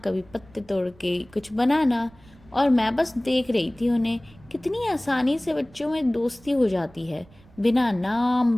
पत्ते तोड़ के कुछ बनाना। और मैं बस देख रही थी उन्हें, कितनी आसानी से बच्चों में दोस्ती हो जाती है, बिना नाम,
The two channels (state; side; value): noise; right; rumble, 26 dB below the sound